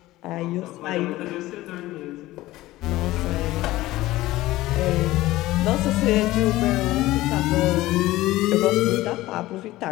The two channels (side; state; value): right; quieter; 17.3 dB